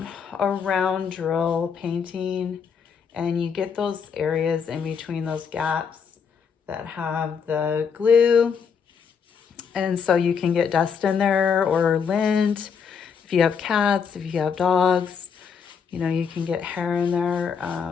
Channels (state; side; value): quieter; right; 6.5 dB